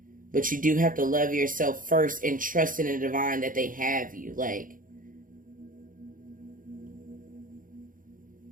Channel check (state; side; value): late; left; 0.40 ms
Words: But you do have to love yourself first and trust in the divine that they have you. Like,